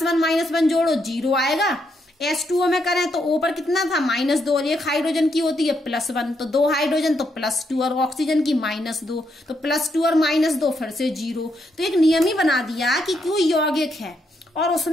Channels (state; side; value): normal; both; correlation 0.78